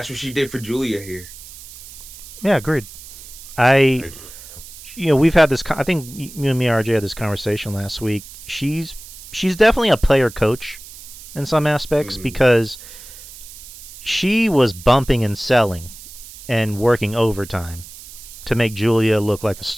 what she did for Julia here. Yeah, agreed. We've had this, I think you and me, RJ, had this conversation last week. She's definitely a player coach in some aspects because she was bumping and selling and working overtime to make Julia look like a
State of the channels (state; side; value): noise; right; hiss, 16 dB below the sound